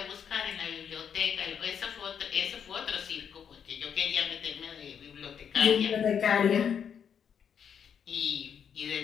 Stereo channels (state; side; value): quieter; right; 7.8 dB